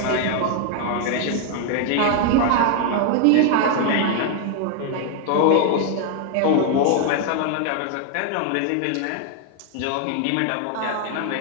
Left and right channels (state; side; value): different; both; correlation 0.00